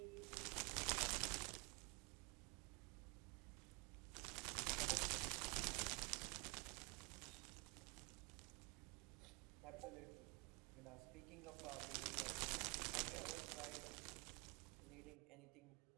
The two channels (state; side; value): quieter; left; 30.3 dB